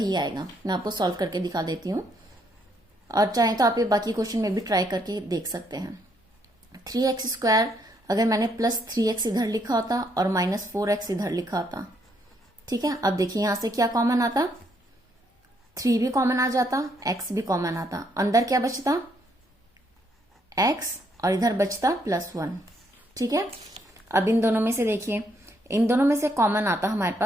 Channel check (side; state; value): both; normal; correlation 0.72